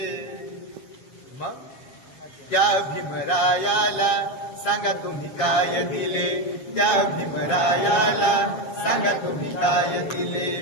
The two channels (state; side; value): late; right; 7.4 ms